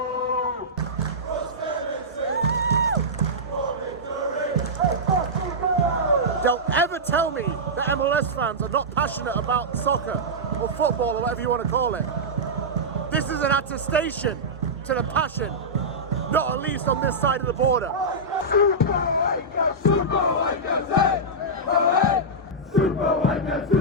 Don't ever tell me that MLS fans are not passionate about soccer or football or whatever you want to call it. This is an attestation to the passion, not at least on this side of the border. Super White Caps, hey! Oh, hey! Super White Caps,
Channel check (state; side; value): normal; both; correlation -0.11